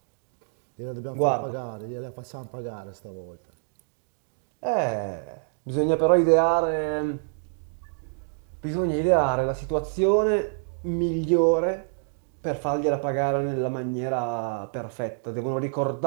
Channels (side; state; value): left; silent; digital silence